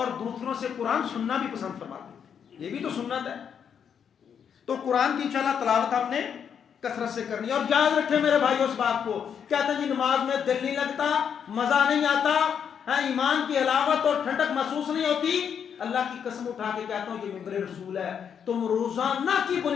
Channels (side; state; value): right; quieter; 7.7 dB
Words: دوسروں سے قرآن سننا بھی پسند فرماتے، یہ بھی تو سنت ہے۔ تو قرآن کی انشاءاللہ تلاوت ہم نے کثرت سے کرنی ہے۔ اور یاد رکھیں میرے بھائیو اس بات کو، کہتے ہیں جی نماز میں دل نہیں لگتا، مزہ نہیں آتا، ایمان کی حلاوت اور ٹھنڈک محسوس نہیں ہوتی، اللہ کی قسم اٹھا کے کہتا ہوں یہ ممبر رسول ہے، تم روزانہ کی